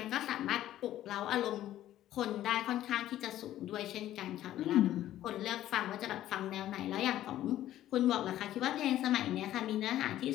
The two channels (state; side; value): quieter; right; 13.1 dB